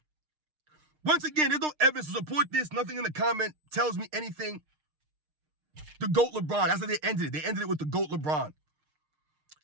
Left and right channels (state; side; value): late; left; 6.5 ms